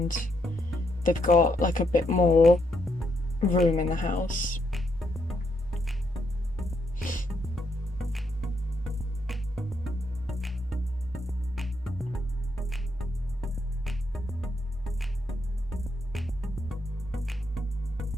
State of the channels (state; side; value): normal; both; correlation 0.77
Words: they've got, like, a bit more room in the house.